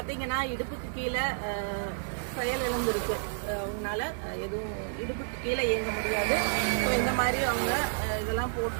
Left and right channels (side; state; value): left; silent; digital silence